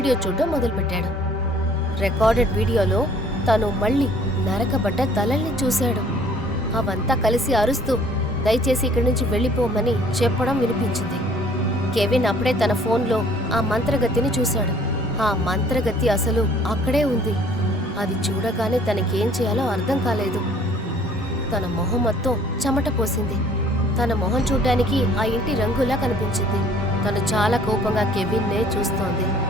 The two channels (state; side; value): normal; both; correlation 0.56